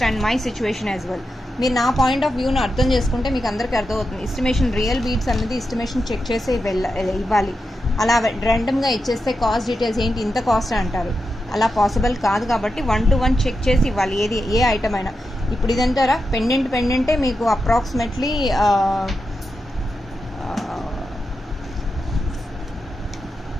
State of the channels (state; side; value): normal; both; correlation 0.88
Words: my situation as well. మీరు నా పాయింట్ ఆఫ్ వ్యూను అర్థం చేసుకుంటే మీకు అందరికీ అర్థమవుతుంది. ఎస్టిమేషన్ రియల్ బీట్స్ అనేది ఎస్టిమేషన్ చెక్ చేసి ఇవ్వాలి. అలా ర్యాండమ్గా ఇచ్చేస్తే కాస్ట్ డీటెయిల్స్ ఏంటి ఇంత కాస్ట్ అంటారు. అలా పాసిబుల్ కాదు కాబట్టి 1 to 1 చెక్ చేసి ఇవ్వాలి ఏది ఏ ఐటమ్ అయినా. ఇప్పుడు ఇదంటారా పెండెంటే మీకు అప్రాక్సిమేట్లీ